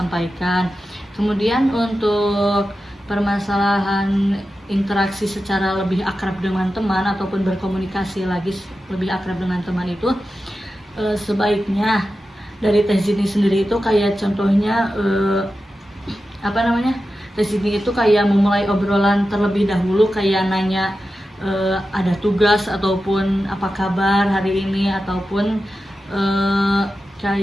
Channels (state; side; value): normal; both; correlation 0.92